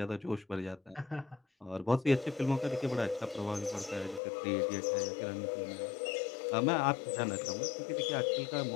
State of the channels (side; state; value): right; drops out; at 4.2 s